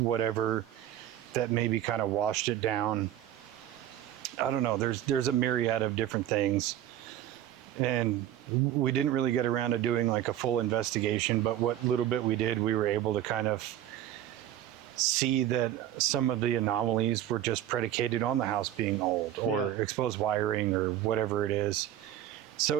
that maybe kind of washed it down. I don't know. There's a myriad of different things. And we didn't really get around to doing like a full investigation, but what little bit we did, we were able to kind of see that some of the anomalies were just predicated on the house being old or exposed wiring or whatever it is.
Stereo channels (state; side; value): quieter; left; 11.8 dB